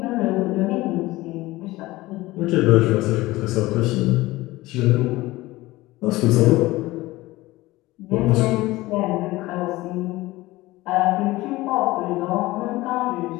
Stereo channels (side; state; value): right; quieter; 18.9 dB